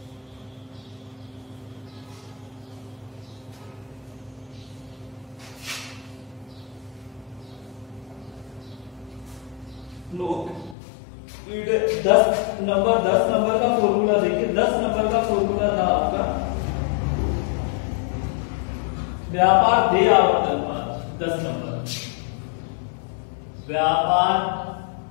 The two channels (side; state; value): right; drops out; at 10.8 s